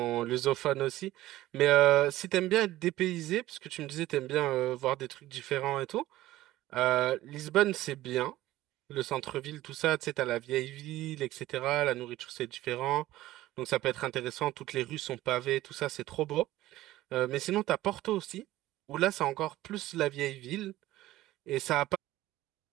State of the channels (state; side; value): quieter; left; 15.8 dB